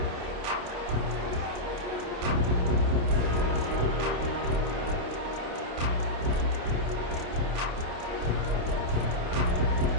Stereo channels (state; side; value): late; left; 28 ms